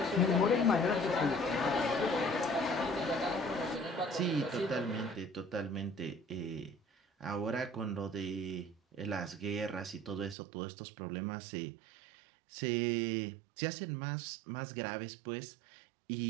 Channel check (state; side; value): drops out; left; at 10.4 s